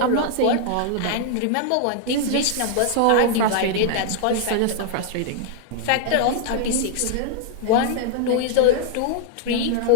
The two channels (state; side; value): different; both; correlation 0.00